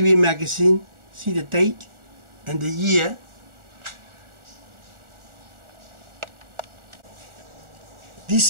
magazine. See the date and the year.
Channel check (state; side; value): late; left; 1.4 ms